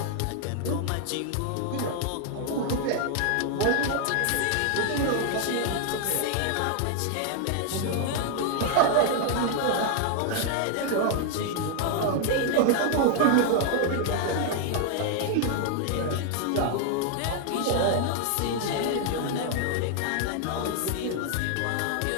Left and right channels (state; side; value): different; both; correlation 0.00